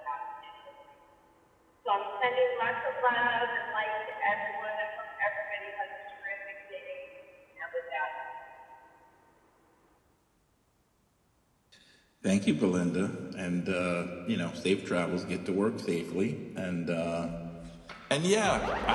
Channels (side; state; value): both; identical; correlation 1.00